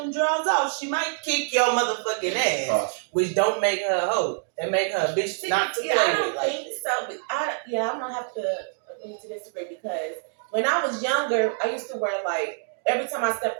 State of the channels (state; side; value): silent; left; 61 dB below the other